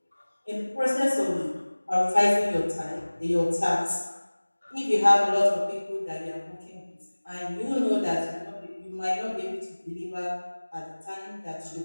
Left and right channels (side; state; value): both; inverted; correlation -1.00